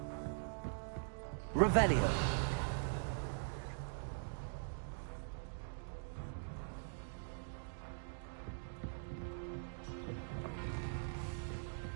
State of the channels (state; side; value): silent; left; digital silence